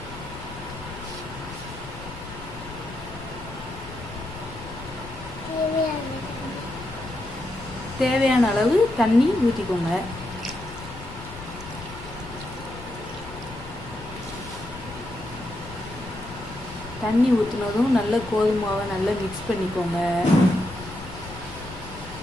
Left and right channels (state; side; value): noise; left; rumble, 14 dB below the sound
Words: தேவையான அளவு தண்ணி ஊற்றிக்கோங்க. தண்ணி ஊற்றினதும் நல்ல கோதுமை மாவை நல்லா மிக்ஸ் பண்ணிக்கோங்க.